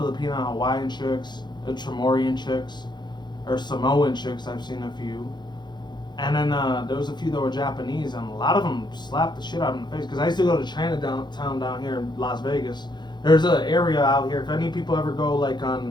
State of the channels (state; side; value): late; right; 0.21 ms